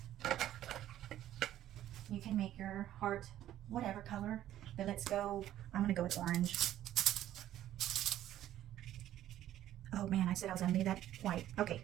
You can make your heart whatever color, but let's go, I'm gonna go with orange. Oh man, I said I was gonna leave that white. Okay,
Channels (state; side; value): quieter; left; 12.6 dB